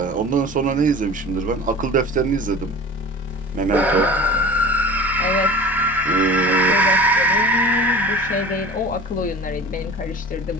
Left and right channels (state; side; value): normal; both; correlation 0.38